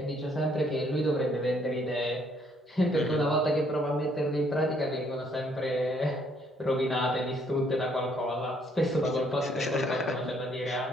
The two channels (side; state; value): both; normal; correlation 0.67